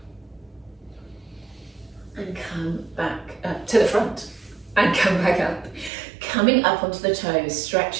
and come back up to the front, and come back up. Coming up onto the toes,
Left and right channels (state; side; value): drops out; left; at 5.9 s